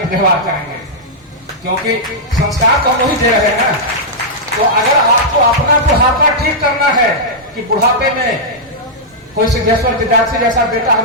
व्यवहार करेंगे, क्योंकि संस्कार तो हम वही दे रहे हैं। तो अगर आपको अपना बुढ़ापा ठीक करना है कि बुढ़ापे में कोई सिद्धेश्वर विद्यार्थी जैसा बेटा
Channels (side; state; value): both; normal; correlation -0.09